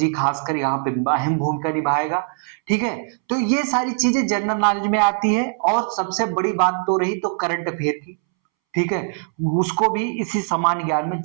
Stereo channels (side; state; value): left; silent; 65 dB below the other